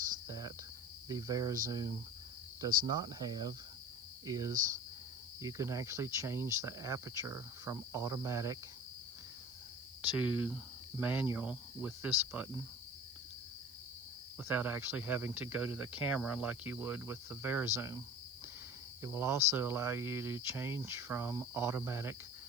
that the VariZoom does not have is you can actually change the aperture from automatic to manual with this button without actually having to go to the camera like you would with the VariZoom. It will also allow you to change from automatic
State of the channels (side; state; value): right; noise; hiss, 21 dB below the sound